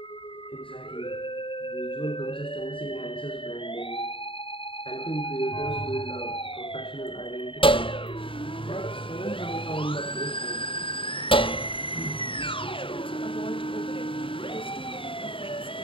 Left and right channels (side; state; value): right; late; 0.25 ms